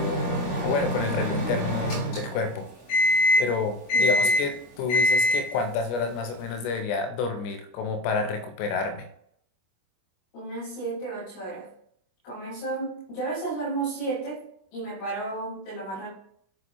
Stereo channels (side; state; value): right; late; 25 ms